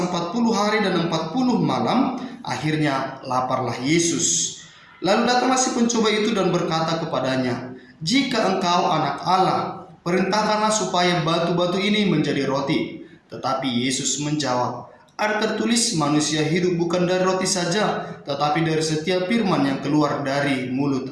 hari dan 40 malam, akhirnya laparlah Yesus. Lalu datanglah si pencoba itu dan berkata kepadanya, "Jika engkau anak Allah, perintahkanlah supaya batu-batu ini menjadi roti." Tetapi Yesus menjawab, "Ada tertulis, manusia hidup bukan dari roti saja, tetapi dari setiap firman yang keluar dari mulut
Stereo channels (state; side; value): identical; both; correlation 1.00